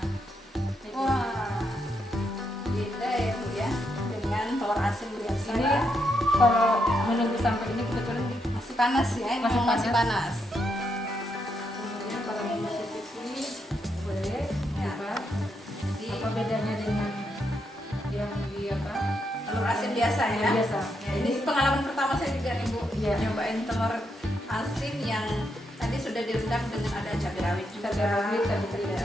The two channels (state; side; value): normal; both; correlation 0.80